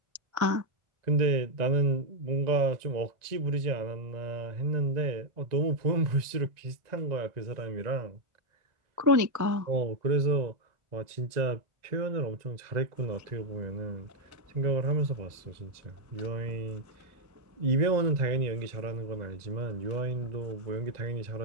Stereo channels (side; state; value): left; late; 1.9 ms